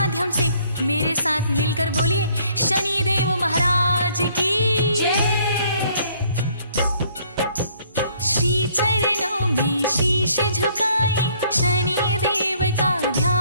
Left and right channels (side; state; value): both; inverted; correlation -0.63